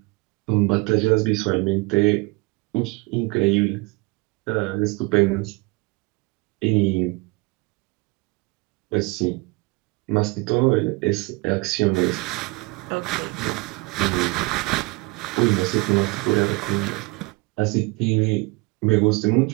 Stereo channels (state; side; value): quieter; left; 25.7 dB